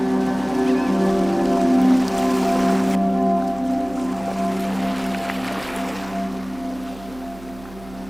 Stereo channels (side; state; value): right; noise; hum, 20 dB below the sound